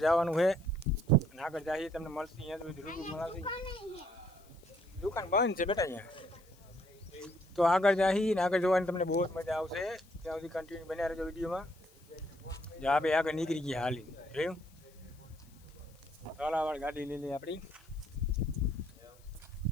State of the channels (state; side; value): noise; left; hiss, 28 dB below the sound